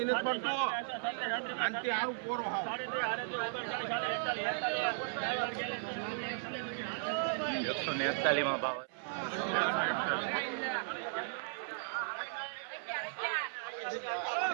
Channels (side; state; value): left; silent; 54 dB below the other